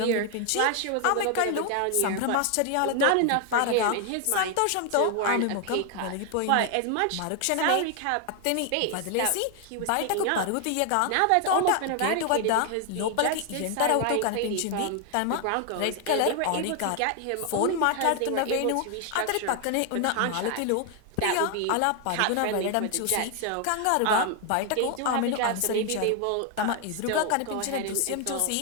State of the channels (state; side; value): different; both; correlation 0.00